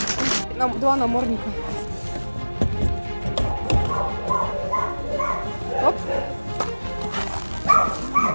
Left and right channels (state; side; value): inverted; both; correlation -1.00